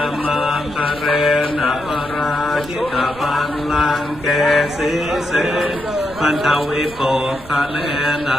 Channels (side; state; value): right; noise; rumble, 19 dB below the sound